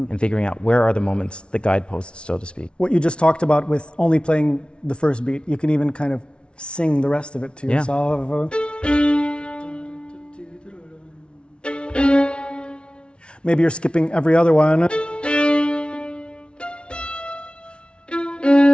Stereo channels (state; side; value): late; right; 0.058 ms